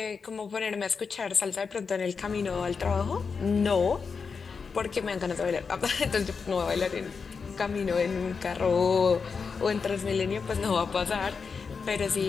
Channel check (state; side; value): quieter; right; 5.4 dB